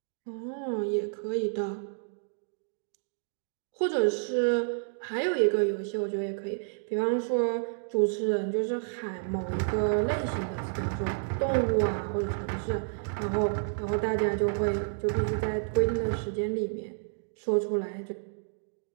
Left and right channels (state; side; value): silent; left; digital silence